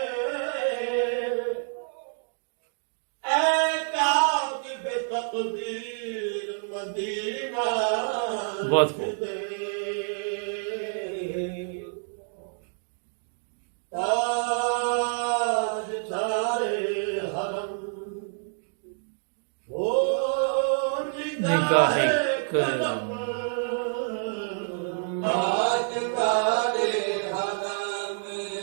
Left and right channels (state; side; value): silent; left; digital silence